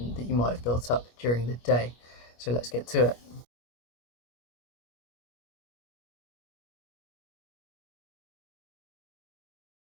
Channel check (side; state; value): right; late; 25 ms